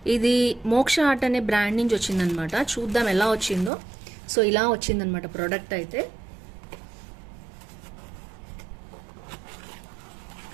ఇది మోక్ష ఆర్ట్ అనే బ్రాండ్ నుంచి వచ్చిందనమాట. చూద్దాం ఎలా వచ్చిందో. సో ఇలా వచ్చిందనమాట ప్రోడక్ట్ అయితే.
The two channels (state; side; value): drops out; left; at 3.7 s